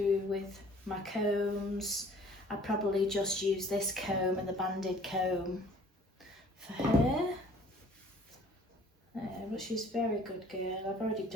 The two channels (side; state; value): both; normal; correlation 0.53